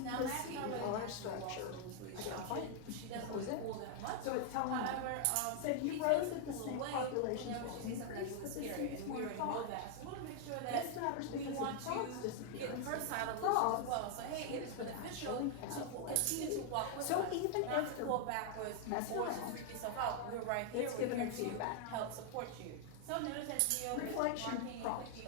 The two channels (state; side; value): different; both; correlation 0.00